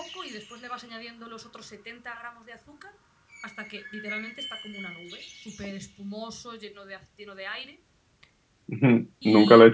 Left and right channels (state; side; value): identical; both; correlation 1.00